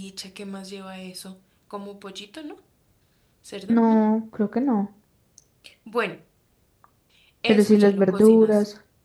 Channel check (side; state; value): both; identical; correlation 1.00